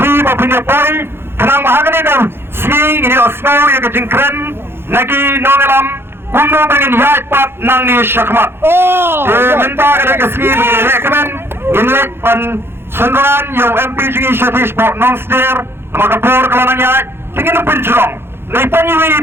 punya poin kenang mahagani kan swing ini osmo yang kejengkren nagi nongelam kuno pengen yat pat nang ni syakmat minta kada ke swing ini rekomen inlet pan senran yang MP jingi Satish Pok Nongster maka por kelanang yat tingin penjerong naitanyiwi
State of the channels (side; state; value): left; late; 0.11 ms